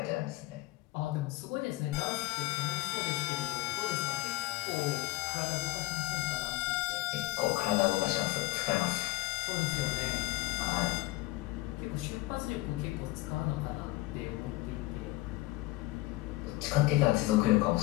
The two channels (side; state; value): right; quieter; 18.9 dB